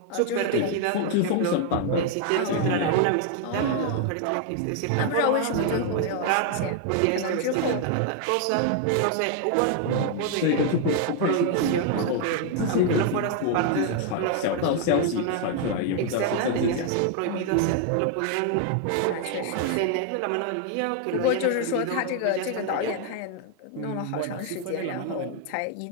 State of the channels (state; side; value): different; both; correlation 0.00